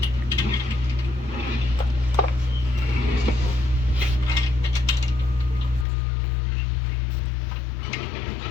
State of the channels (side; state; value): right; drops out; at 5.9 s